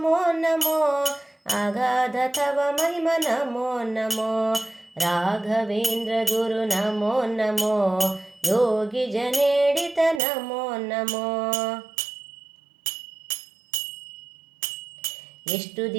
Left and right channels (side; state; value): left; drops out; at 10.2 s